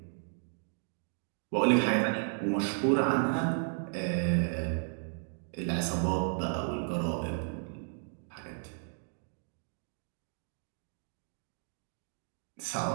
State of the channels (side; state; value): left; silent; 55 dB below the other